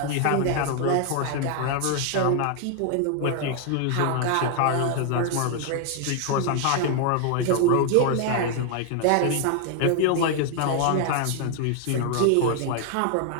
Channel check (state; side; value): different; both; correlation 0.00